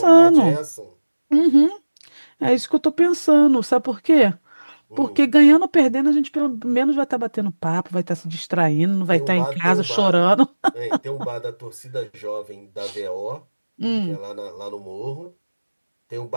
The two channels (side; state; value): both; inverted; correlation -1.00